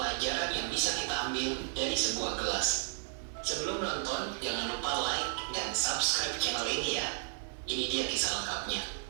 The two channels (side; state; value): left; silent; 55 dB below the other